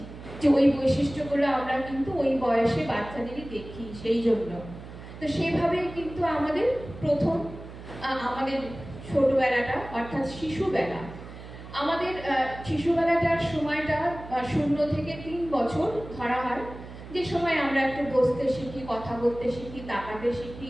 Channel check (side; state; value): right; noise; hum, 14 dB below the sound